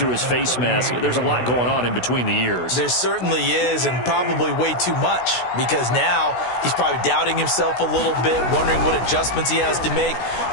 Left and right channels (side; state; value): right; late; 16 ms